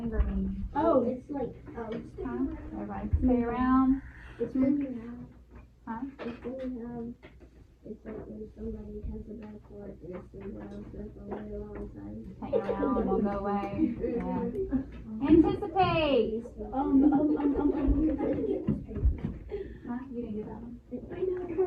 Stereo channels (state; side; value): identical; both; correlation 1.00